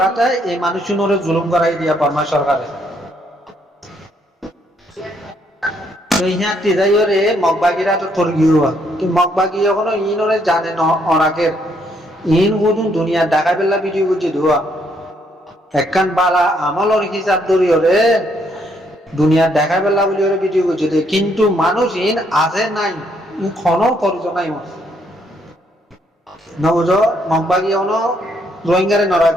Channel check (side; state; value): both; normal; correlation 0.71